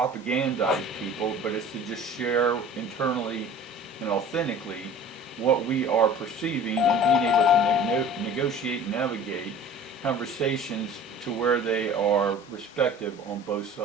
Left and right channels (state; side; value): normal; both; correlation 0.44